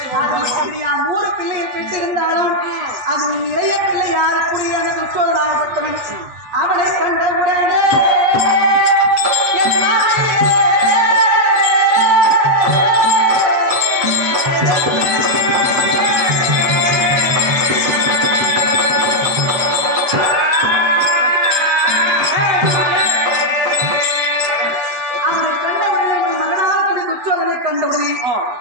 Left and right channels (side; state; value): left; late; 8.2 ms